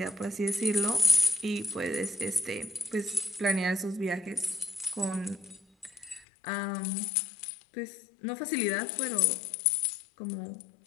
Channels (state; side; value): drops out; right; at 6.2 s